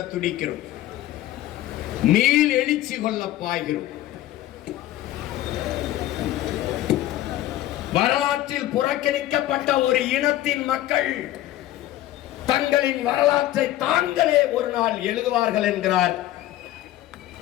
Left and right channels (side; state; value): right; quieter; 14.5 dB